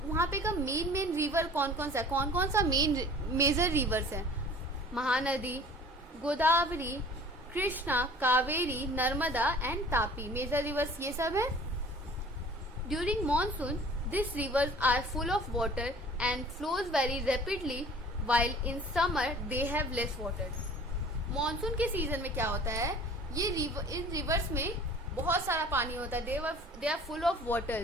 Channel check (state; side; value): normal; both; correlation 0.47